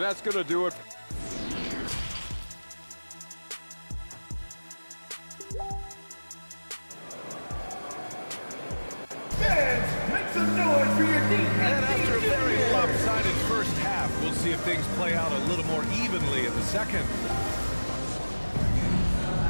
going to do it. And after a very lopsided first half, we'll see if things play out a little more evenly in the second.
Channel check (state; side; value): inverted; both; correlation -1.00